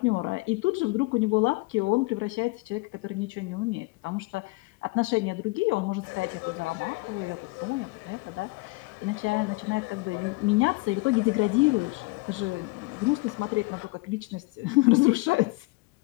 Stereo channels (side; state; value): right; quieter; 24.8 dB